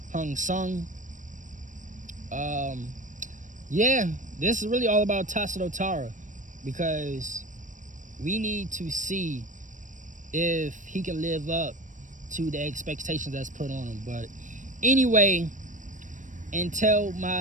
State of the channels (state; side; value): late; left; 0.37 ms